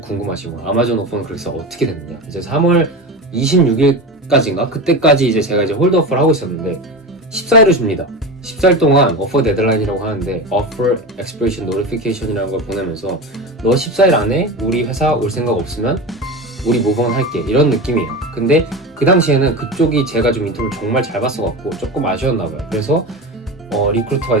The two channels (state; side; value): normal; both; correlation 0.25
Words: 거 아마존 오퍼는 그래서 어떻게 됐느냐. 이제 3월 26일까지인가 그때까지 이제 제가 이제 홀드오퍼를 하고 있었는데 14일을 줍니다. 14일 동안 오퍼 데드라인이라고 하는데 Offer Expiration Notification이라는 걸 보내면서 너 14일 안에 우리 회사 올 생각 없으면 우리 모브온 할게 이런 느낌이에요. 근데 그 당시에는 그쪽이 제가 좀 인터뷰를 정말 잘 봤어갖고 조금 아쉬웠나 봐요. 그래서 리크루터가